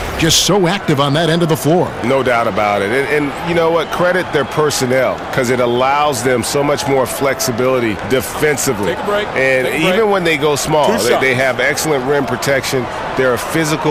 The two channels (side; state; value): both; identical; correlation 1.00